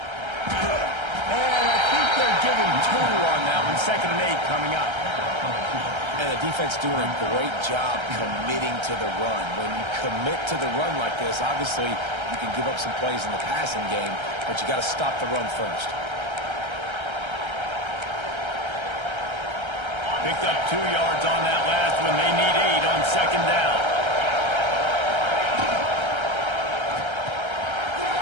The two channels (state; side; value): late; left; 1.3 ms